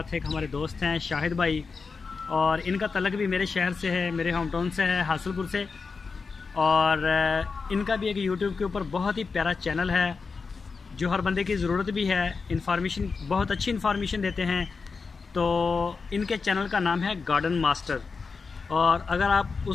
एक हमारे दोस्त हैं शाहिद भाई, और इनका तलक भी मेरे शहर से है, मेरे होम टाउन से है, हासिलपुर से। और इनका भी एक यूट्यूब के ऊपर बहुत ही प्यारा चैनल है जो हर बंदे की ज़रूरत भी है। इन्फॉर्मेशन, बहुत अच्छी इन्फॉर्मेशन देते हैं। तो इनके चैनल का नाम है गार्डन मास्टर, और अगर आप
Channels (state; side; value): quieter; right; 4.8 dB